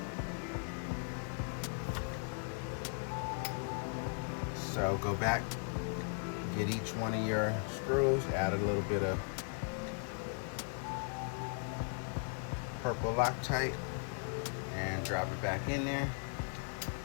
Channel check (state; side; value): silent; right; 53 dB below the other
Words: So go back Get each one of your screws, add a little bit of purple Loctite, and drop it back in there.